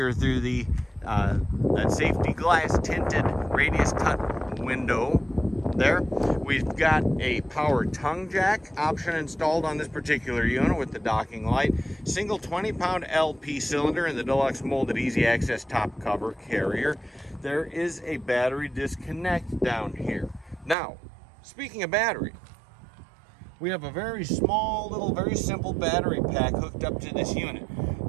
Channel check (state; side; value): drops out; left; at 20.8 s